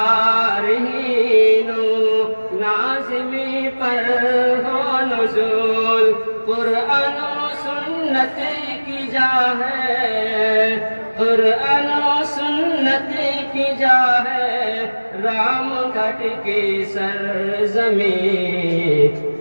و نازمی پر ہو نزول، قرآن و سنت کی جا ہے، قرآن و سنت کی جا ہے رام گھٹ کی سرزمین،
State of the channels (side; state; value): both; inverted; correlation -1.00